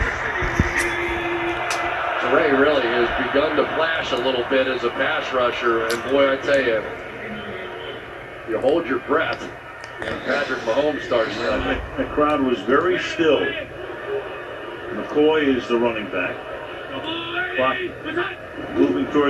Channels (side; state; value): both; identical; correlation 1.00